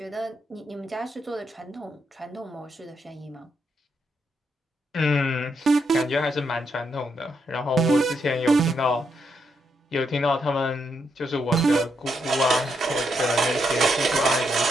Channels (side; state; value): both; normal; correlation 0.79